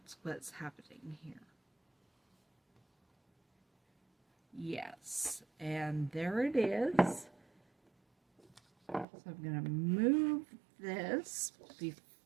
what's happening here. Yes, and there it is. So I'm going to move this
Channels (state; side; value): drops out; left; at 9.1 s